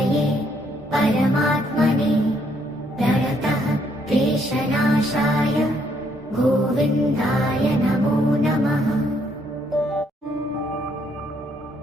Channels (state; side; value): normal; both; correlation 0.70